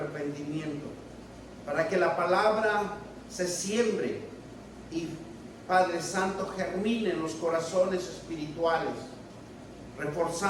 para que la palabra se siembre y, Padre Santo, germine en los corazones espirituales,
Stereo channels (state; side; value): identical; both; correlation 1.00